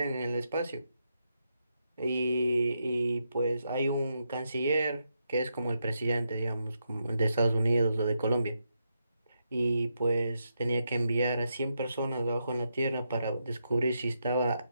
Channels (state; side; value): inverted; both; correlation -0.82